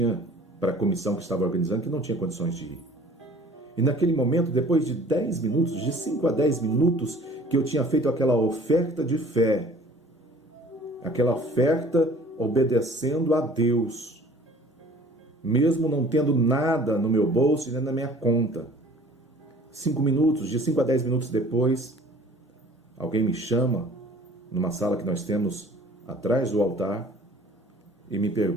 para a comissão que estava organizando, que não tinha condições de ir. E naquele momento, depois de 10 minutos, de 5 a 10 minutos, que eu tinha feito aquela oferta de fé, aquela oferta obedecendo a Deus, mesmo não tendo nada no meu bolso e nem na minha conta. 5 minutos, de 5 a 10 minutos depois, alguém me chama numa sala que nós temos atrás do altar e me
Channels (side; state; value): both; normal; correlation 0.50